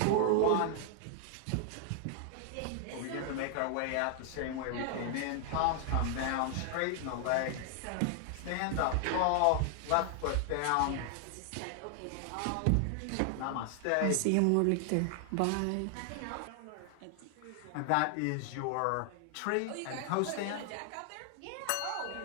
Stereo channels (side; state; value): both; different; correlation 0.00